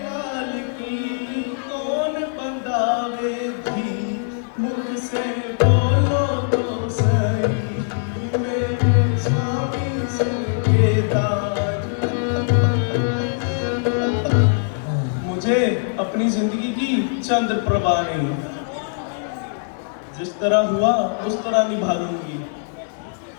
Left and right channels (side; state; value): right; silent; digital silence